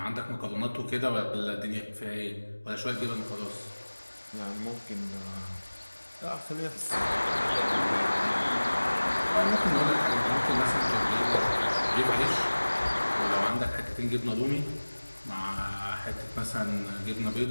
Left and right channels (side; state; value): both; inverted; correlation -1.00